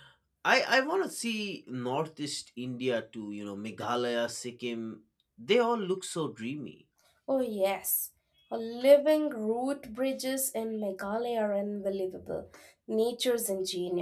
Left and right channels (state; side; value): identical; both; correlation 1.00